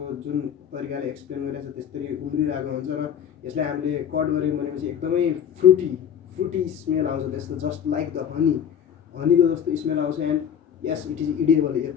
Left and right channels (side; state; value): right; quieter; 8.7 dB